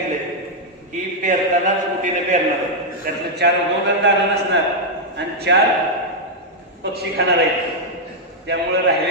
की पेरतानाच कुठेनं पेरणार, त्यातलं 4 उगवणार दाणं नसणार आणि 4 पक्षी खाणार आहेत. त्यामुळे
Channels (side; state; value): both; normal; correlation -0.02